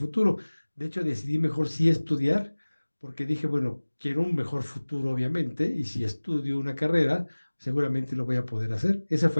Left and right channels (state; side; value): inverted; both; correlation -1.00